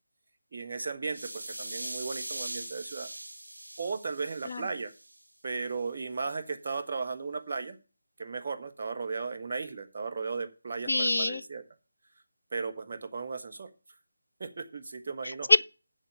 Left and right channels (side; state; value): both; inverted; correlation -0.90